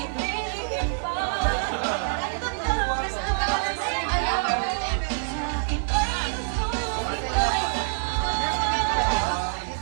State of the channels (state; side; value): silent; left; 61 dB below the other